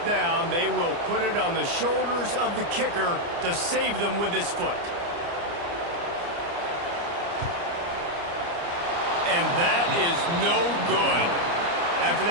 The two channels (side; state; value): left; late; 29 ms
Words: down, they will put it on the shoulders of the kicker to save them with his foot. And that is no good. After